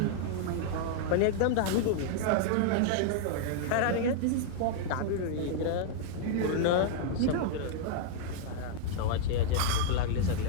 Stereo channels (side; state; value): both; different; correlation -0.01